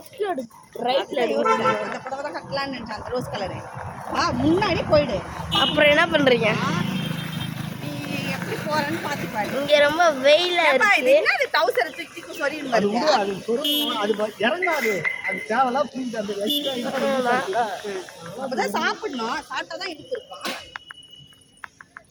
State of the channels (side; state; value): both; identical; correlation 1.00